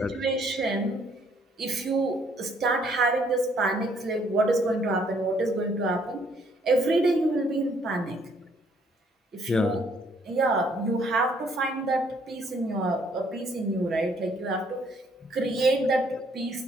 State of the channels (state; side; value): normal; both; correlation 0.65